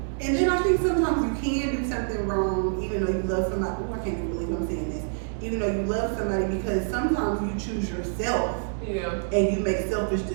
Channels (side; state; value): left; silent; digital silence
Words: And then I think sometimes you can do something wrong even though you love somebody. Oh, I can't even believe I'm saying this. Even though you love somebody, because sometimes you choose yourself and you make selfish